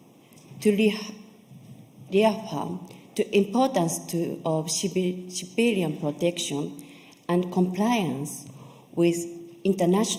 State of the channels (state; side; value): identical; both; correlation 1.00